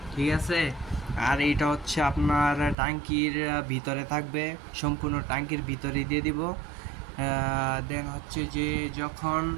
ঠিক আছে। আর এটা হচ্ছে আপনার ট্যাঙ্কির ভিতরে থাকবে, সম্পূর্ণ ট্যাঙ্কির ভিতরে দিয়ে দিব। দেন হচ্ছে যে যখন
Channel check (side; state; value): left; drops out; at 2.8 s